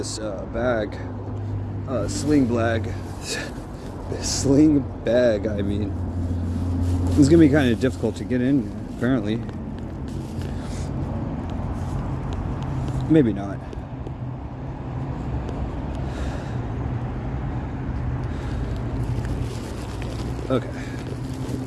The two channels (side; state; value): both; identical; correlation 1.00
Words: bag. Sling bag. Sling bag, I mean. It's gonna be kind of difficult to get in, apparently. Maybe not. Okay.